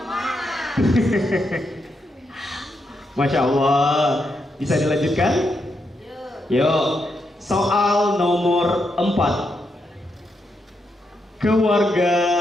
Masya Allah. Bisa dilanjutkan? Yuk. Soal nomor 4.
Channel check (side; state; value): both; normal; correlation 0.82